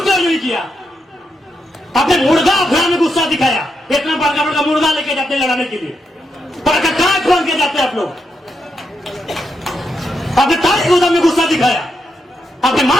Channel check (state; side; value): normal; both; correlation 0.83